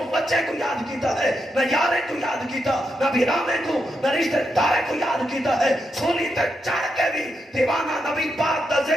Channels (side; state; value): both; normal; correlation 0.83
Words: بچے کو یاد کیتا ہے نہ یارے کو یاد کیتا نہ بیرامے کو نہ رشتہ دارے کو یاد کیتا ہے سولی تے چڑھ کے بھی دیوانہ نبی پاک دا